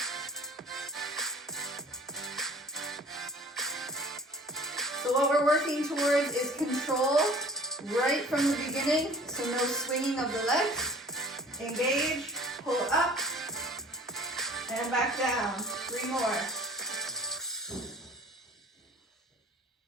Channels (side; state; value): both; normal; correlation 0.48